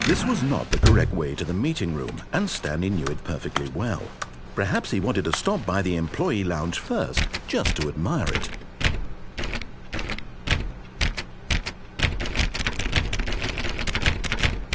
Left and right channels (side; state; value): both; identical; correlation 1.00